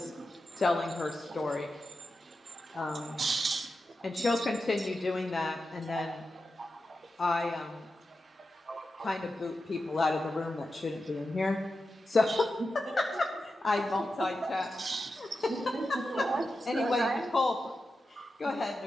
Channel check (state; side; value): normal; both; correlation 0.90